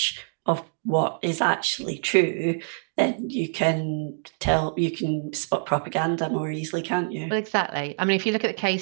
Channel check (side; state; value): left; silent; digital silence